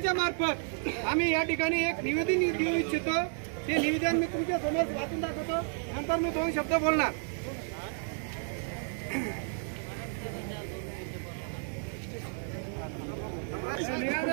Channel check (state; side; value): silent; left; 57 dB below the other